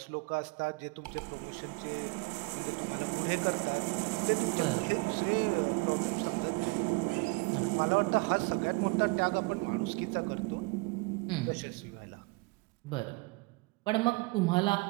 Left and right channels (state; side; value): quieter; left; 26.3 dB